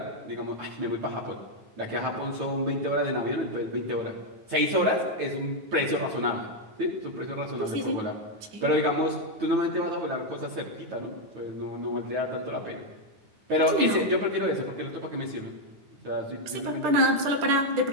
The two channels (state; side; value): late; left; 9.3 ms